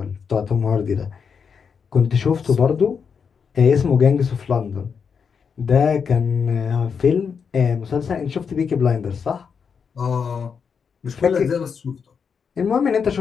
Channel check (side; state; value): right; quieter; 6.3 dB